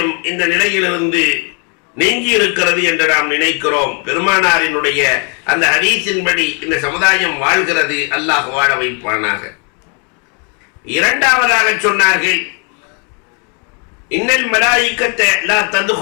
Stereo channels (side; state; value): right; quieter; 36.4 dB